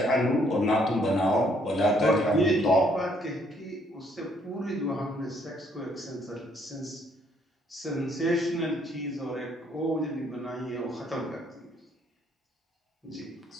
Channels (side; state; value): both; normal; correlation 0.67